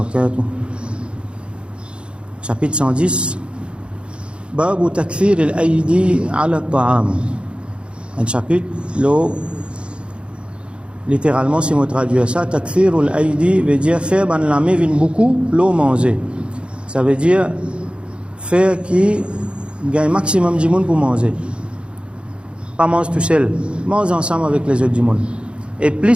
Chapitre 110 باب تكثير الأيدي على الطعام. Un chapitre littéralement, si on traduit ça, takthirul aidi veut dire faire ban la main vient beaucoup l'eau manger. Ça veut dire faire qui gagne maximum du monde pour manger. Pas manger tout seul, mange ensemble avec les autres du monde. Et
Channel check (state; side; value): late; left; 0.057 ms